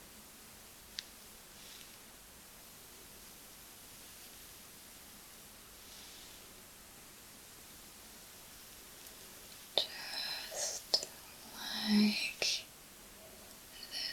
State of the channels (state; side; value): identical; both; correlation 1.00